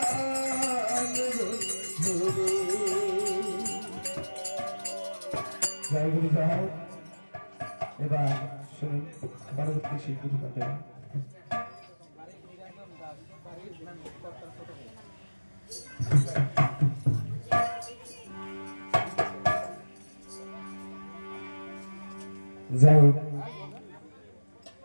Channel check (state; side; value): inverted; both; correlation -1.00